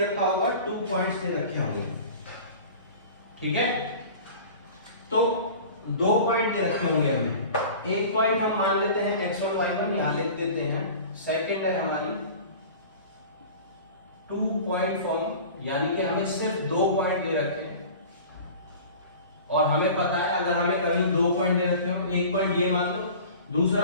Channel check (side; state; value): both; inverted; correlation -0.40